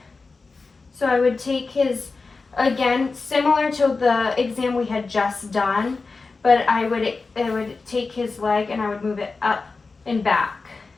So I would take his, again, similar to the exam we had just done, but I would take his leg and I would move it up and back.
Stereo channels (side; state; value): right; quieter; 4.1 dB